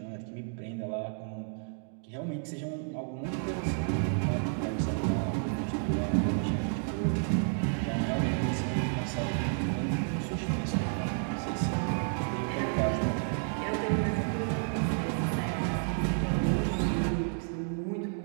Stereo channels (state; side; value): silent; left; 57 dB below the other